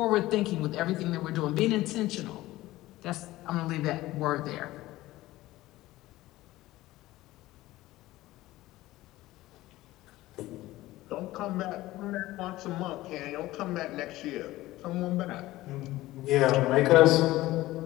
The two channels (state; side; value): quieter; right; 17.2 dB